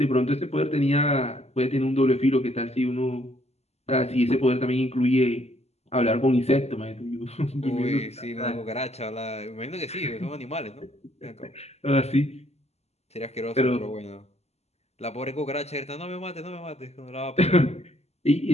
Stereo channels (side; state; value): right; late; 0.31 ms